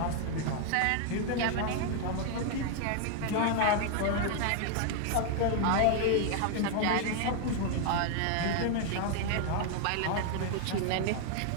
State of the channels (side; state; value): both; different; correlation 0.00